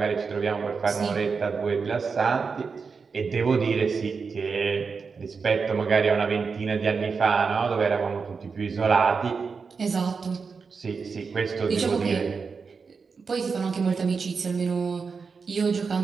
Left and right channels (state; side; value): quieter; left; 5.2 dB